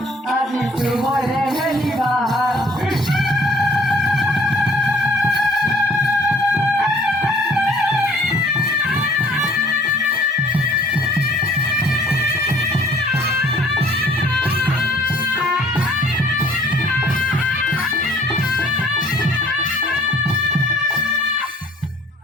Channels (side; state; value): both; normal; correlation 0.56